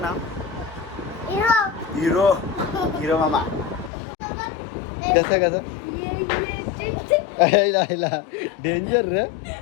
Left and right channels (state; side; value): drops out; right; at 3.9 s